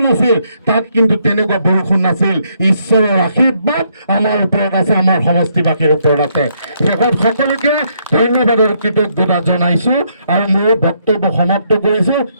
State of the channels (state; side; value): inverted; both; correlation -0.73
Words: আছিল তাত কিন্তু তেনেকুৱা বৰষুণ নাছিল। ঈশ্বৰৰ আশীৰ্বাদ আমাৰ ওপৰত আছে, আমাৰ সমষ্টিবাসীৰ ওপৰত আছে। শেষত সকলোকে ধন্যবাদৰ কৃতজ্ঞতা জনাইছোঁ আৰু মোৰ বক্তব্য সমাপ্ত কৰিছোঁ।